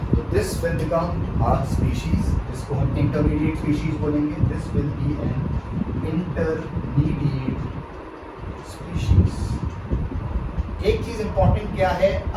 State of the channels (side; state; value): both; identical; correlation 1.00